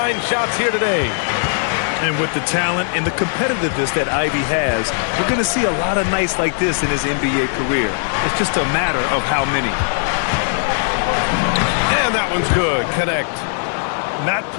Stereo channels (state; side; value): silent; right; digital silence